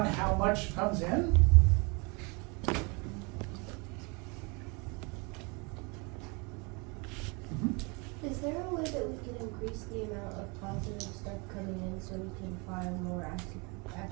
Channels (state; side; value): quieter; left; 30.4 dB